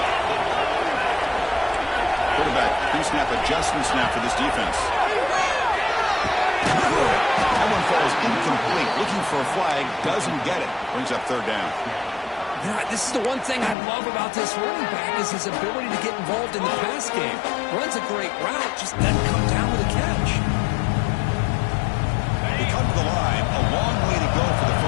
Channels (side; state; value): right; drops out; at 13.8 s